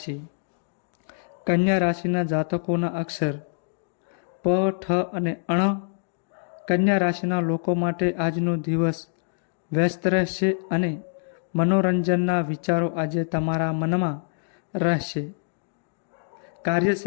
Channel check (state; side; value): silent; right; digital silence